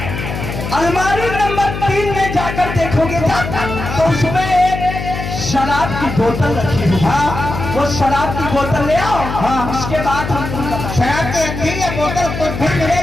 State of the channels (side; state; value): left; noise; hum, 6 dB below the sound